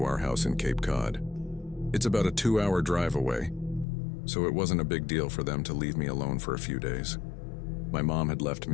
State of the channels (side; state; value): right; drops out; at 3.9 s